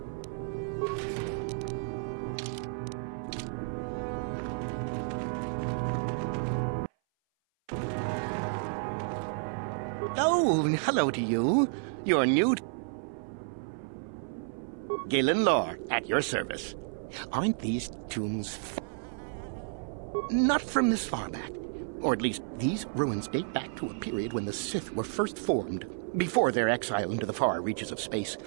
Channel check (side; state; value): left; silent; 57 dB below the other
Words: Oh, hello to you. You're new. Galen Lore, at your service. Aren't these tombs not from this far back? Or at least, these ruins date back to a period when the Sith were first formed, before their exile into the far reaches of space.